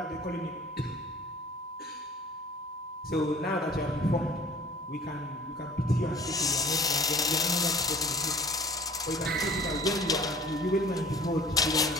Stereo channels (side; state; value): both; normal; correlation 0.48